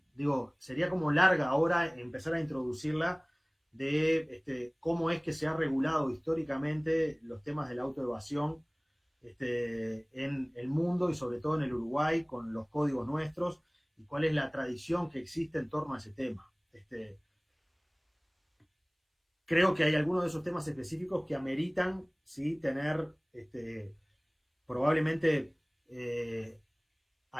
digo, sería como larga ahora empezar a introducirla, de cómo es que se ha regulado históricamente los temas de la autoevasión en el mundo y sobre todo en el Uruguay con los códigos nuestros, y cuál es la tradición que existe en torno a ese tema. Creo que hay algunos de esos temas específicos que ameritan, ¿sí?, tener probablemente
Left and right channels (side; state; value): both; identical; correlation 1.00